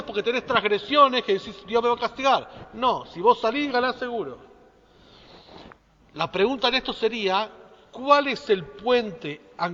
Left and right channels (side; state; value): both; identical; correlation 1.00